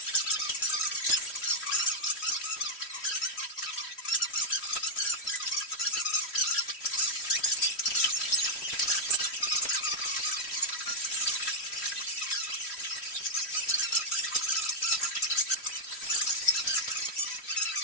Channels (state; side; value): late; right; 3.1 ms